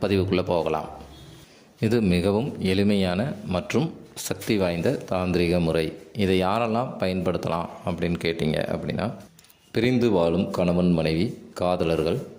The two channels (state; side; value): identical; both; correlation 1.00